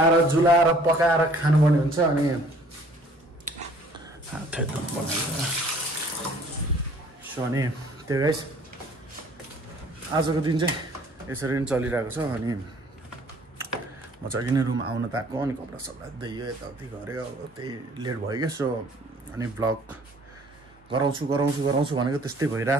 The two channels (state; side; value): normal; both; correlation 0.56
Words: जुलाएर पकाएर खानुपर्ने हुन्छ। अनि सो अनि त्यो गाइस आजको दिन चाहिँ यसरी नै चलिरहेको छ। अनि म चाहिँ अघि नै रुम आउन त आएको, अनि कपडा सपडा दियो यताउति गऱ्यो, अब त्यही लेट भयो क्या। सो अनि भ्लग गराउँछु भनेको त्यस्तै